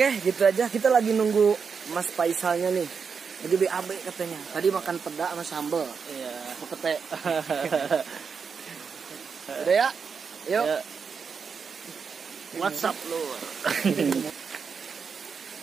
gitu aja. Kita lagi nunggu Mas Faisalnya nih. Lagi BAB katanya. Tadi makan peda sama sambal. Iya. Pete. Udah ya? Yuk. Ya. WhatsApp lu.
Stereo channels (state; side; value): quieter; left; 5.9 dB